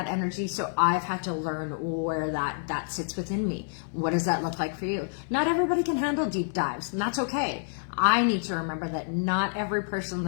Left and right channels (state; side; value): silent; right; digital silence